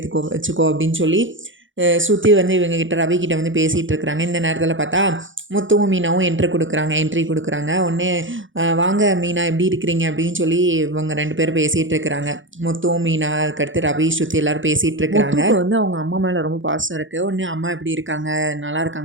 வச்சுக்கோ அப்படின்னு சொல்லி ஸ்ருதி வந்து இவங்ககிட்ட ரவிக்கிட்ட வந்து பேசிகிட்டு இருக்கிறாங்க. இந்த நேரத்தில் பார்த்தா முத்துவும் மீனாவும் என்ட்ரி கொடுக்குறாங்க. உடனே வாங்க மீனா எப்படி இருக்கிறீங்க அப்படின்னு சொல்லி இவங்க 2 பேரும் பேசிகிட்டு இருக்கிறாங்க. முத்துவும் மீனா அதுக்கடுத்து ரவி ஸ்ருதி எல்லோரும் பேசிகிட்டு இருக்கிறாங்க. வந்து அவங்க அம்மா மேலே ரொம்ப பாசம் இருக்குது. உடனே அம்மா எப்படி இருக்காங்க, நல்லா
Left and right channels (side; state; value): left; late; 0.56 ms